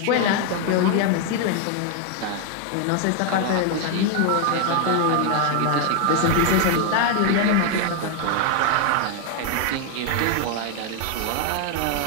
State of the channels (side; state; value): both; different; correlation 0.00